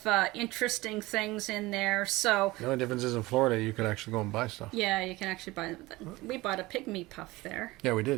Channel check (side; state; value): left; quieter; 20.3 dB